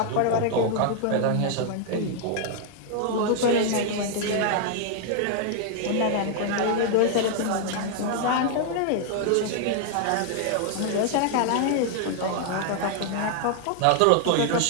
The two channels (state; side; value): different; both; correlation 0.00